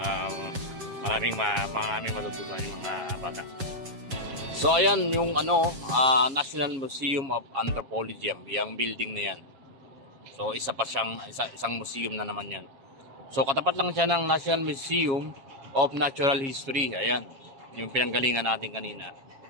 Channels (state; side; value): late; left; 7.4 ms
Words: Maraming matututunan yung mga bata. So ayan yung National Museum of Anthropology, yung building na yan. So isang museum na naman yan. So katapat lang siya ng National Museum of Natural History. Ayan, yung pinanggalingan natin kanina.